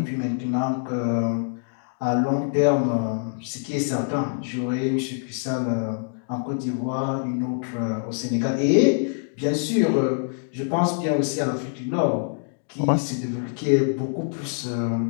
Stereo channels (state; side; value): silent; right; digital silence